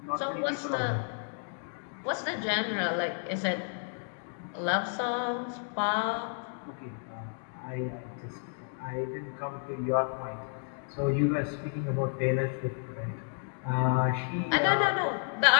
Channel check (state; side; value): silent; right; 57 dB below the other